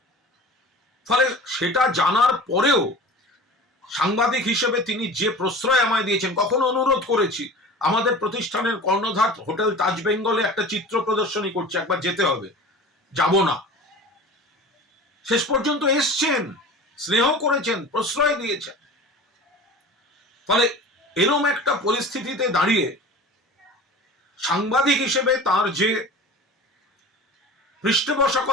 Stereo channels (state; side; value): normal; both; correlation 0.38